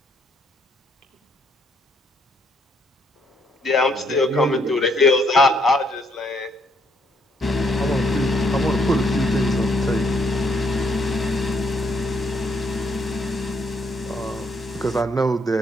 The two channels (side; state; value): both; normal; correlation 0.71